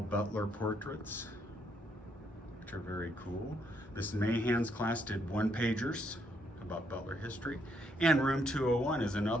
portraits, which are very cool. Miss Mahan's class did one-pagers about Butler history. And room 201 is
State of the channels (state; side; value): normal; both; correlation 0.74